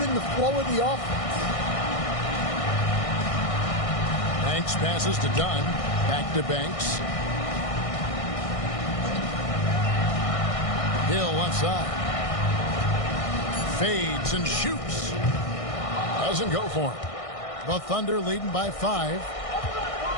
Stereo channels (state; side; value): late; right; 1.6 ms